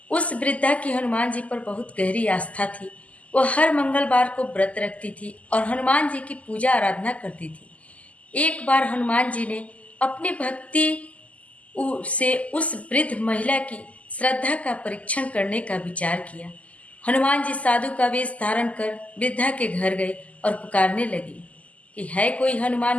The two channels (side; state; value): right; late; 0.069 ms